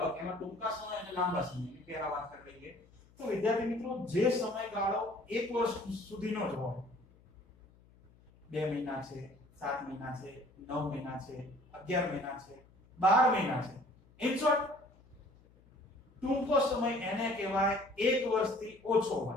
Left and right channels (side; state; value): left; noise; hum, 27 dB below the sound